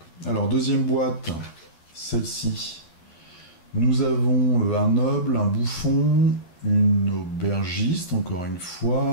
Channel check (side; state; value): right; late; 11 ms